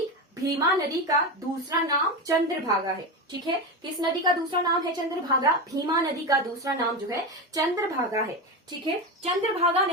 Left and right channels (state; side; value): normal; both; correlation 0.18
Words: भीमा नदी का दूसरा नाम चंद्रभागा है, ठीक है। किस नदी का दूसरा नाम है चंद्रभागा, भीमा नदी का दूसरा नाम जो है चंद्रभागा है, ठीक है। चंद्रभागा